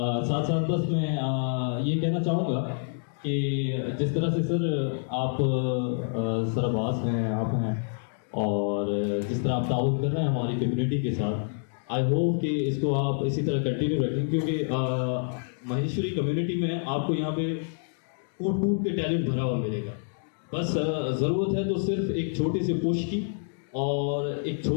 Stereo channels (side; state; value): right; silent; digital silence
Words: साथ साथ बस मैं ये कहना चाहूँगा कि जिस तरह से सर आप सरबाज हैं, आप हैं और जिस तरह आप ताउन कर रहे हैं हमारी कम्युनिटी के साथ, आई होप कि इसको आप इसी तरह कंटिन्यू रखें क्योंकि महेश्वरी कम्युनिटी में आपको यहाँ पे कूट कूट के टैलेंट भरा हुआ मिलेगा। बस ज़रूरत है तो सिर्फ एक छोटे से पुश की और एक